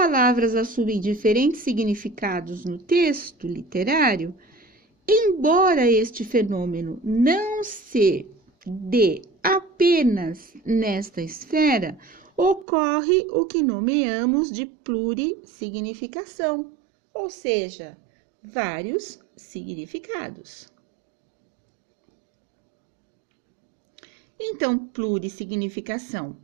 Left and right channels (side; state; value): left; drops out; at 12.7 s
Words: assumem diferentes significados no texto literário, embora este fenômeno não se dê apenas nesta esfera, ocorre o que nomeamos de plurissignificação, ou seja, vários significados. Então, plurissignificação.